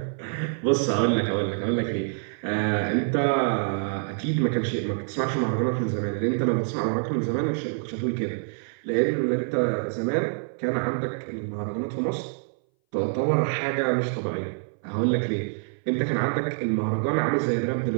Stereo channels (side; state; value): left; silent; 59 dB below the other